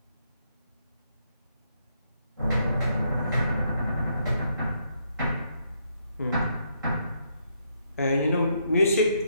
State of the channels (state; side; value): inverted; both; correlation -0.75